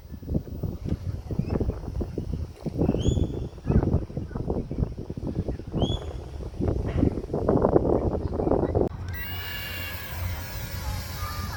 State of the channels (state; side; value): identical; both; correlation 1.00